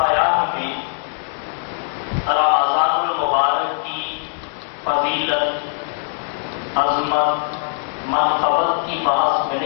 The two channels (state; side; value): silent; right; digital silence